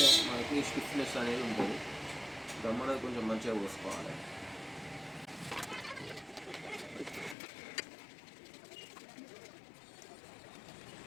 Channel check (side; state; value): right; drops out; at 7.4 s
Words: మనకి స్టిఫ్నెస్ అనేది ఉంటుంది. గమ్ అనేది కొంచెం మంచిగా పోసుకోవాలి.